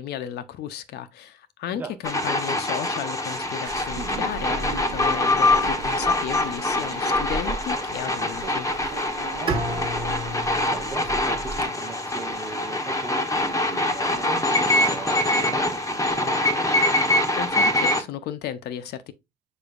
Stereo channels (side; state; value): both; normal; correlation 0.25